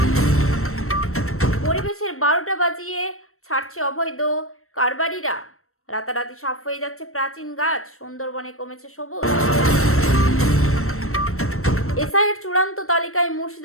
পরিবেশের 12টা বাজিয়ে ছাড়ছে অবৈধ কারবারিরা, রাতারাতি সাফ হয়ে যাচ্ছে প্রাচীন গাছ, সুন্দরবনে কমেছে সবুজ। এসআইয়ের চূড়ান্ত তালিকায়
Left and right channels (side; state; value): right; late; 0.63 ms